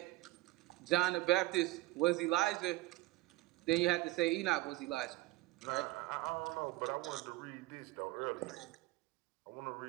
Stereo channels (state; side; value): quieter; left; 19.3 dB